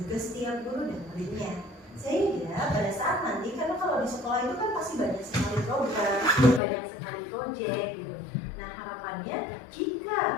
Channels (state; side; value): drops out; right; at 6.6 s